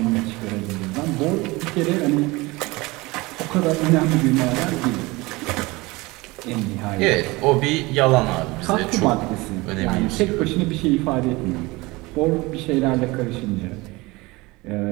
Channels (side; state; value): left; quieter; 22.6 dB